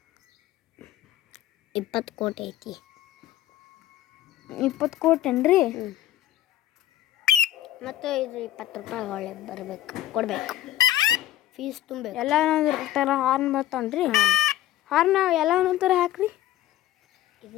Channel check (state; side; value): quieter; right; 13.5 dB